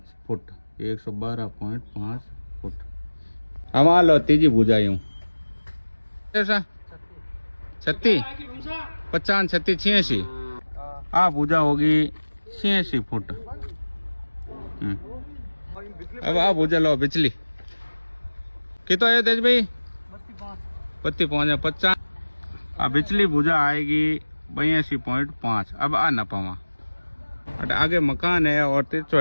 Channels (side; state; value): both; inverted; correlation -1.00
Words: फुट, 112.5 फुट। हम आ लो तीजी भुजा यूं 36 50 36 86। आ भुजा होगी 86 फुट। अब आ भुजा लो बिचली कितो है तेज भाई 32.5 50। आ बिचली भुजा आएगी 82.5। अब आ नपावा आगे मकान है और तिरछो